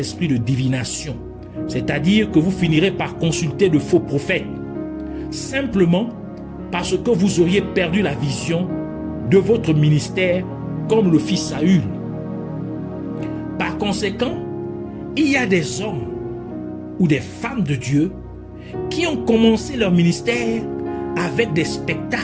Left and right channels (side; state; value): both; identical; correlation 1.00